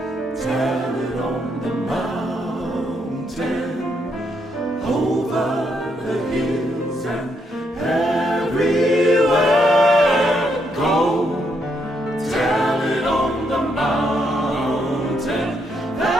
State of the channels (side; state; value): both; normal; correlation 0.76